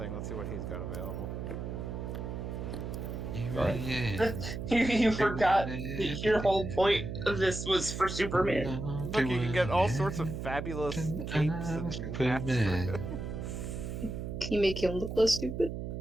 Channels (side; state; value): right; noise; hum, 5 dB below the sound